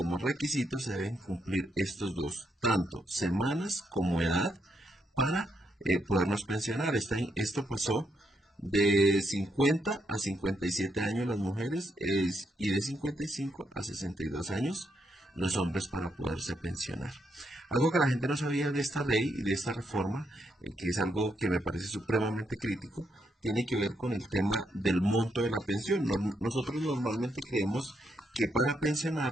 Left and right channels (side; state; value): both; normal; correlation 0.78